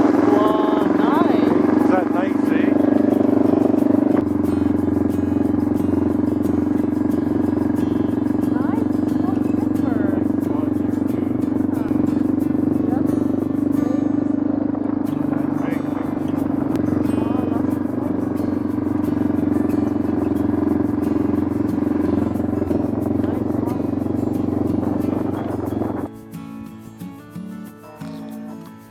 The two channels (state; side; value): identical; both; correlation 1.00